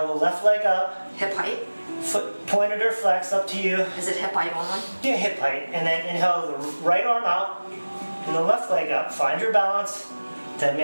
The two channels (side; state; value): both; inverted; correlation -1.00